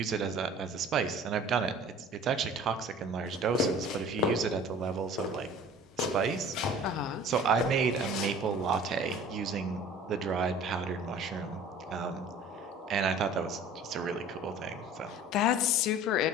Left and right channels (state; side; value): normal; both; correlation 0.46